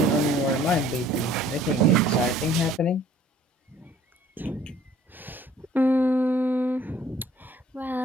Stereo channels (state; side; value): normal; both; correlation 0.56